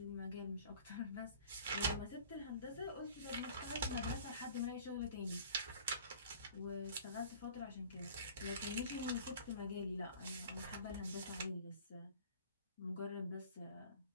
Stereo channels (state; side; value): inverted; both; correlation -0.46